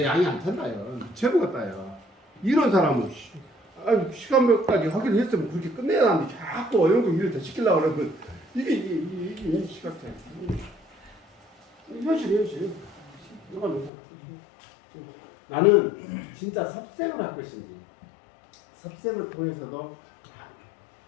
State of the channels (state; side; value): drops out; right; at 13.9 s